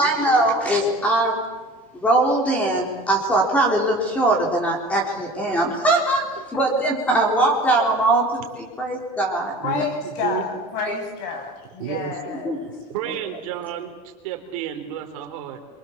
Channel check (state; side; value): normal; both; correlation 0.42